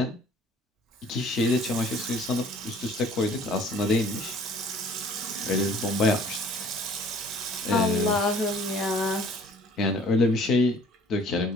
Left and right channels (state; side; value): normal; both; correlation 0.53